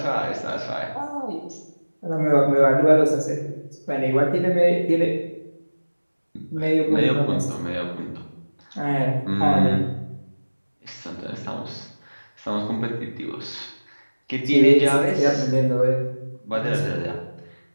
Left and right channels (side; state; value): both; inverted; correlation -1.00